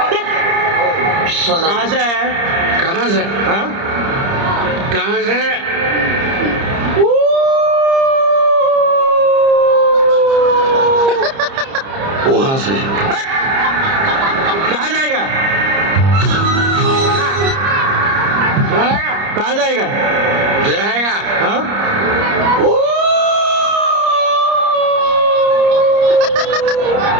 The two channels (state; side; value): late; left; 30 ms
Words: कहाँ से है कहाँ से हाँ कहाँ से वहां से कहाँ जाएगा कहाँ जाएगा जाएगा हाँ